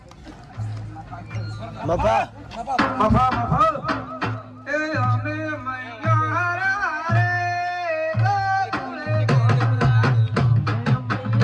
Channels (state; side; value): identical; both; correlation 1.00